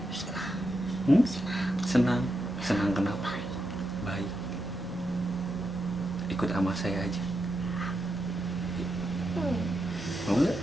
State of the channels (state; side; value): normal; both; correlation 0.85